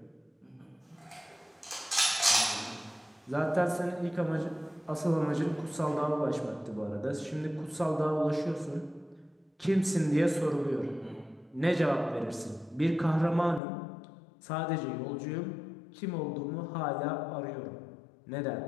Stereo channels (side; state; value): right; drops out; at 13.6 s